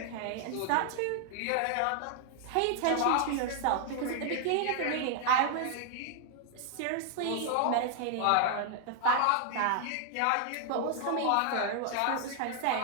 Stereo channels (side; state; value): both; different; correlation 0.00